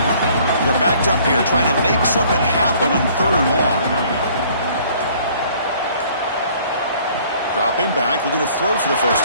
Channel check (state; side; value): inverted; both; correlation -0.57